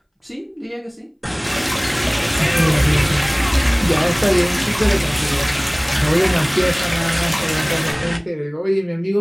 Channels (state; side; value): identical; both; correlation 1.00